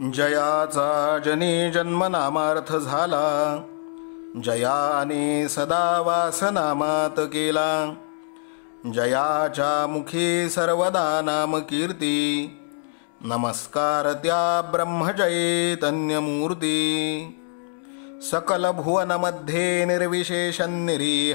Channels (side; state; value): right; silent; digital silence